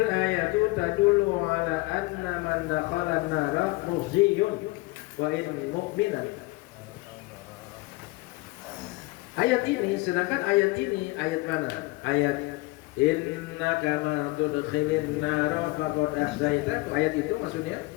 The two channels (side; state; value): right; quieter; 22.5 dB